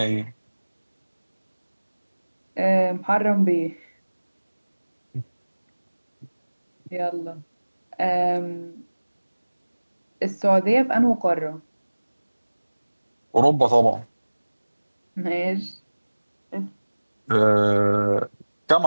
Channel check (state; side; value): inverted; both; correlation -1.00